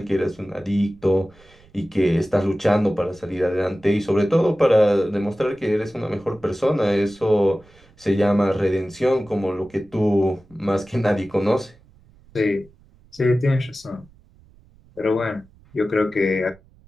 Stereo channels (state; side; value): noise; right; rumble, 28 dB below the sound